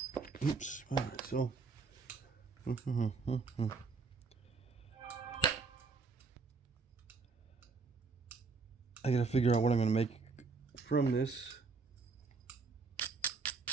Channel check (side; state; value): left; quieter; 4.6 dB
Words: Oops. All right. So. I gotta figure out what I'm gonna make from this.